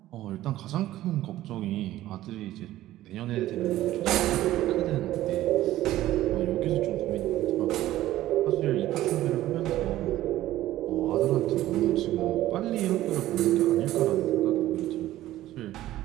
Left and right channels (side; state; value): left; quieter; 14.7 dB